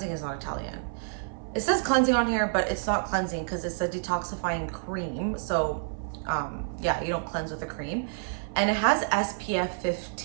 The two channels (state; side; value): silent; left; 59 dB below the other